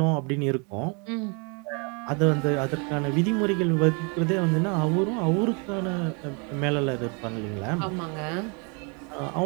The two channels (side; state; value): left; quieter; 33.8 dB